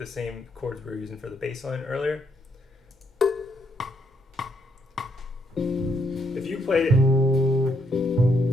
same chords we were using for the bass line earlier. If you played it,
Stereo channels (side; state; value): both; normal; correlation 0.74